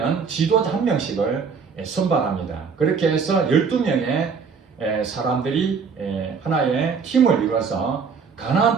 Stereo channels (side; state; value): left; quieter; 5.7 dB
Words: 지도자 한 명씩을 선발합니다. 그렇게 해서 12명의 사람들이 하나의 팀을 이루어서 가나안